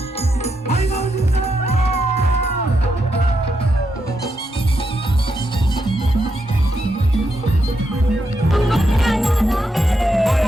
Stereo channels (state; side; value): normal; both; correlation 0.82